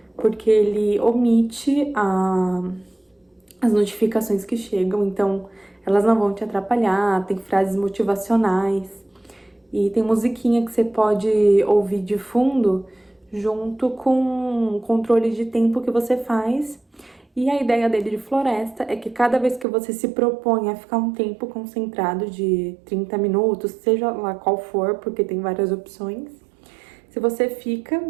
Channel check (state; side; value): drops out; left; at 19.7 s